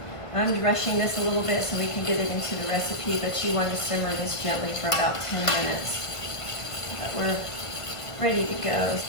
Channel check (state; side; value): late; right; 1.5 ms